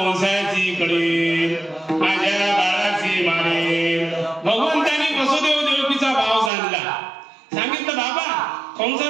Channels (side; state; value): left; drops out; at 6.5 s